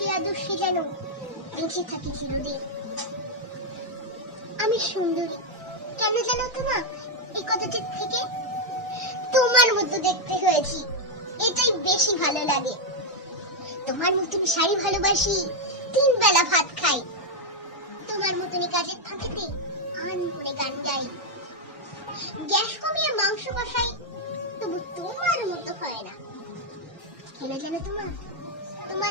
আদর্শে যেন বেঁচে থাকি চিরদিন। আমি সুন্দরী কেন জানো তোমার এই কথাটির থেকে? তোমার মতো দেখতে হয়েছি, এটাই বেশি ভালো লাগে। তোমার মতন শাড়ি ভালোবাসি, 3 বেলা ভাত খাই। তোমার মতনই কাজের ফাঁকেতে আন করে গান গাই। গ্যাস কমিয়ে মাংস কষাই, তবু তোমার মতো হয় না। কেন জানো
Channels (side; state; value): both; normal; correlation 0.01